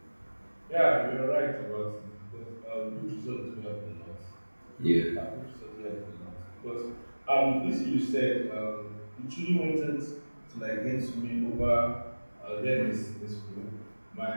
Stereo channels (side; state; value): both; inverted; correlation -1.00